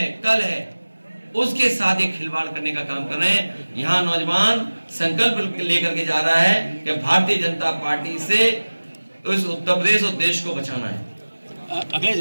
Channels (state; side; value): inverted; both; correlation -1.00